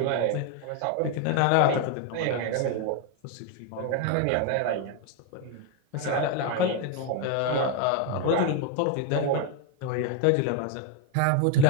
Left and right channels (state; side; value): different; both; correlation 0.01